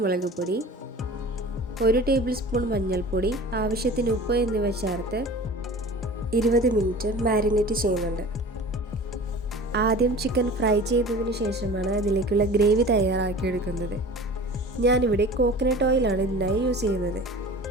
മുളക് പൊടി, 1 ടേബിൾ സ്പൂൺ മഞ്ഞൾപ്പൊടി, ആവശ്യത്തിന് ഉപ്പ് എന്നിവ ചേർത്ത് 20 മിനിറ്റ് മാരിനേറ്റ് ചെയ്യുന്നുണ്ട്. ആദ്യം ചിക്കൻ ഫ്രൈ ചെയ്തതിന് ശേഷമാണ് അതിലേക്കുള്ള ഗ്രേവി തയ്യാറാക്കിയെടുക്കുന്നത്. ഞാനിവിടെ കോക്കനട്ട് ഓയിലാണ് ഇതിനായി യൂസ് ചെയ്യുന്നത്.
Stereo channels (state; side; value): normal; both; correlation 0.40